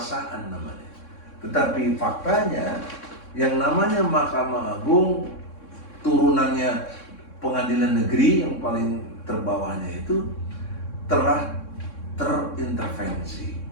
namanya. Tetapi faktanya yang namanya Mahkamah Agung turunannya pengadilan negeri yang paling terbawahnya itu telah terintervensi.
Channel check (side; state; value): right; late; 3.6 ms